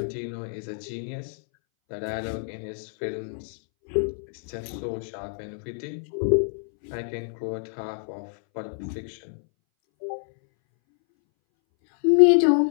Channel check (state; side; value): silent; right; 60 dB below the other